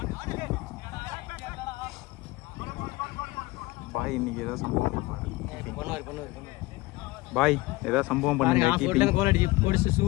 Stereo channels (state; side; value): quieter; right; 20.8 dB